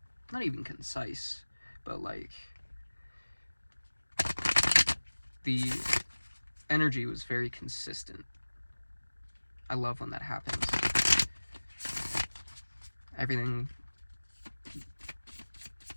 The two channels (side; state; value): both; inverted; correlation -1.00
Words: Not even concise, but, like, the energy was very consistent. I love when that happens. Everything,